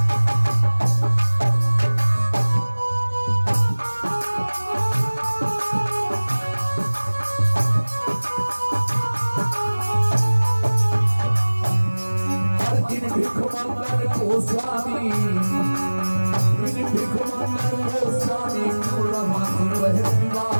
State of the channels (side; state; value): both; inverted; correlation -1.00